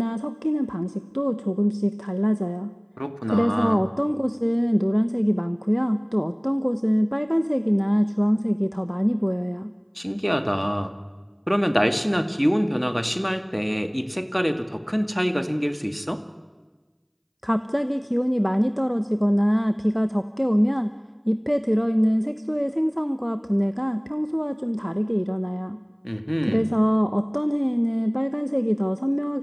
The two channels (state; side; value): identical; both; correlation 1.00